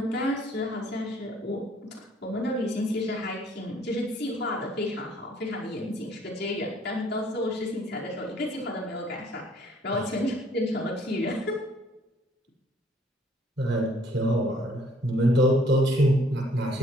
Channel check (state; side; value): normal; both; correlation 0.61